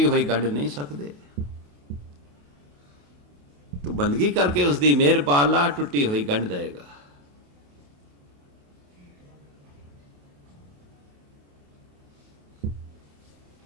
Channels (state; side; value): late; left; 28 ms